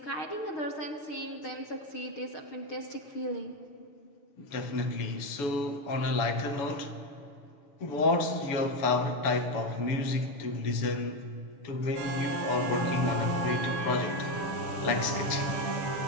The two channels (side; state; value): right; late; 7.0 ms